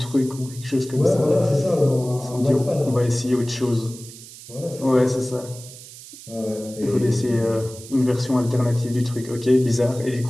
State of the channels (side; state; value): right; noise; hiss, 17 dB below the sound